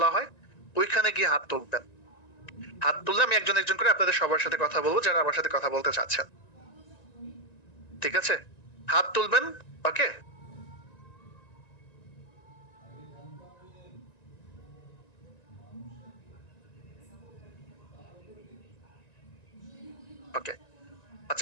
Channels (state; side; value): late; right; 1.9 ms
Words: হয়, ওইখানে গিয়ে হাত তুলবেন। হাত তুললে আমি একজন একজন করে আপনাদের সবার সাথে কথা বলবো যারা আমার সাথে কথা বলতে চাচ্ছেন। ঠিক আছে, হাত তুলবেন। ওকে, ওকে।